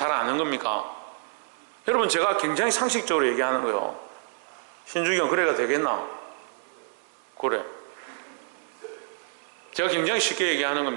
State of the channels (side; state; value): left; silent; digital silence